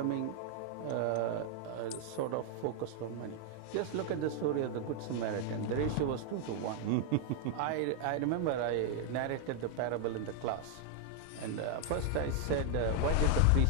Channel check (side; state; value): both; different; correlation 0.00